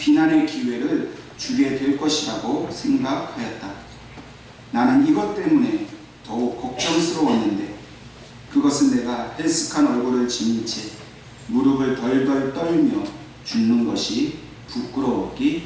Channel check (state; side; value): identical; both; correlation 1.00